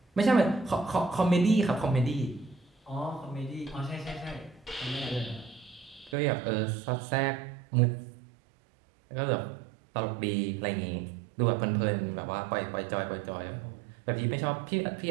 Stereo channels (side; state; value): left; drops out; at 6.2 s